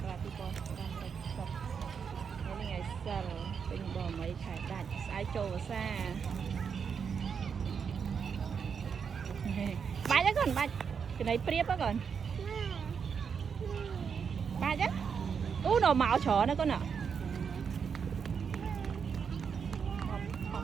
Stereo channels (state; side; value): quieter; left; 6.5 dB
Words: ករាជ2560ថ្ងៃនេះថ្ងៃសិលពេញបមីខែដាច់ស្អែកចូលវស្សាបាច់ហ្នឹងកូនបាច់ចំណៃព្រៀបហ្នឹងកូនបាច់ហ្នឹងអូnó mạo chó nữa con ạ học